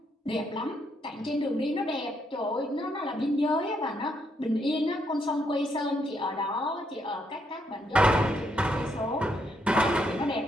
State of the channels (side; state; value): both; normal; correlation 0.76